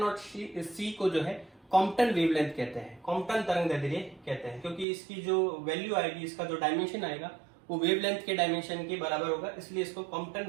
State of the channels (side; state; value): left; drops out; at 4.9 s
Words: c को जो है कॉम्पटन वेवलेंथ कहते हैं, कॉम्पटन तरंगदैर्ध्य कहते हैं, क्योंकि इसकी जो वैल्यू आएगी, इसका जो डायमेंशन आएगा वो वेवलेंथ के डायमेंशन के बराबर होगा, इसलिए इसको